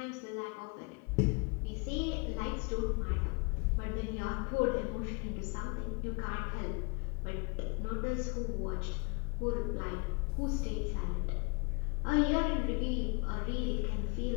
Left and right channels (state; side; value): quieter; right; 31.1 dB